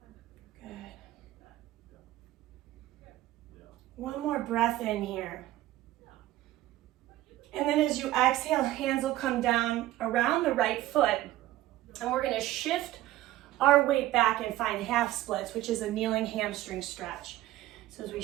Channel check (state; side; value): quieter; left; 15.4 dB